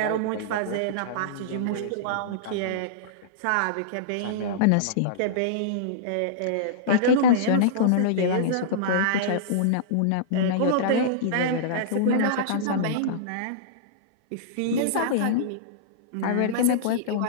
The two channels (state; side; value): different; both; correlation -0.03